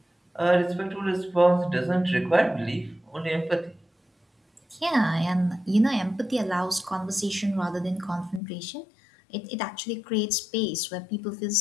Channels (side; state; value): right; drops out; at 8.4 s